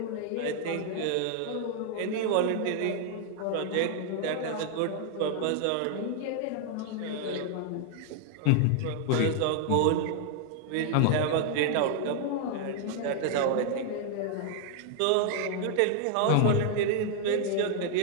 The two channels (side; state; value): both; different; correlation 0.00